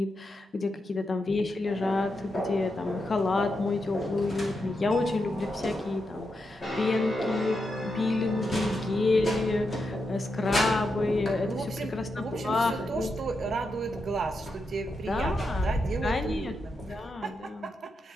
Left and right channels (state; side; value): normal; both; correlation 0.85